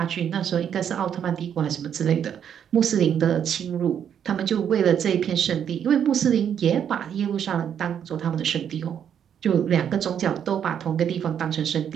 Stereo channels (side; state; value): left; quieter; 8.7 dB